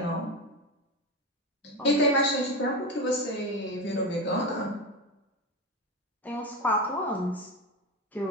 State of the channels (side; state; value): both; normal; correlation 0.18